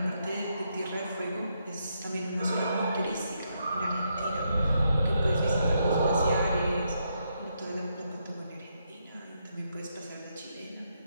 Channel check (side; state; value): both; inverted; correlation -0.79